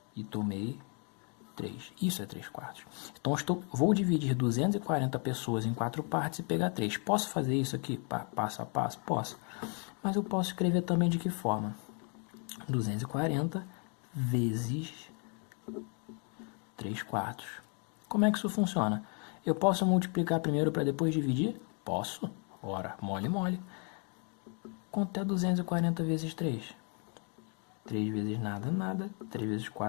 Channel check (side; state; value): right; quieter; 38.3 dB